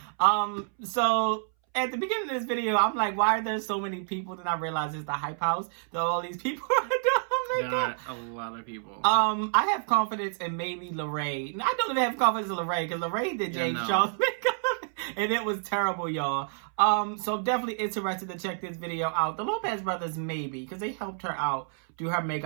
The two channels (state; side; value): silent; left; 59 dB below the other